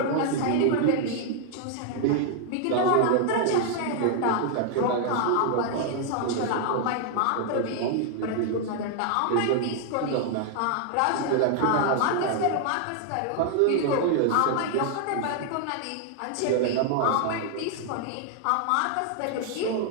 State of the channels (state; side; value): different; both; correlation 0.00